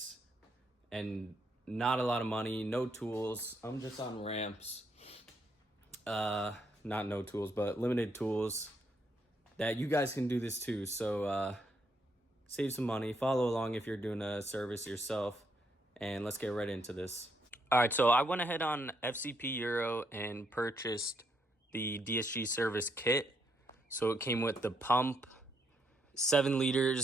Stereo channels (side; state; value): both; normal; correlation 0.76